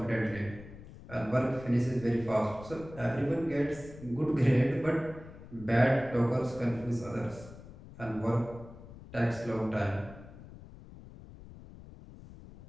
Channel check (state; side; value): noise; left; rumble, 17 dB below the sound